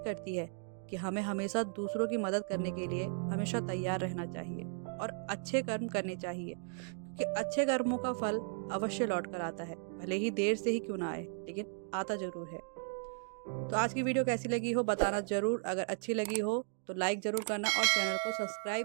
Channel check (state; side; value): silent; left; 54 dB below the other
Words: है कि हमें हमेशा दूसरों की मदद करने के लिए हमेशा तैयार रहना चाहिए और अच्छे कर्म करने चाहिए, क्योंकि अच्छे कर्मों का फल अवश्य लौट कर आता है। भले ही देर से ही क्यों ना आए, लेकिन आता जरूर है। तो आज की वीडियो कैसी लगी हो बताना जरूर। अगर अच्छी लगी हो तो लाइक जरूर करना और चैनल को सब्सक्राइब